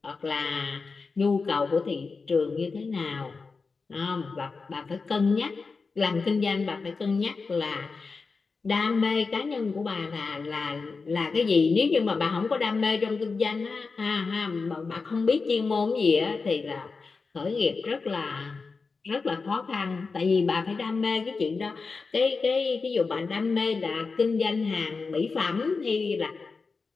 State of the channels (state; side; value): quieter; right; 4.5 dB